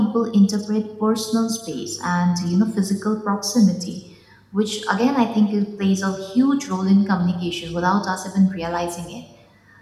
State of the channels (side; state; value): both; identical; correlation 1.00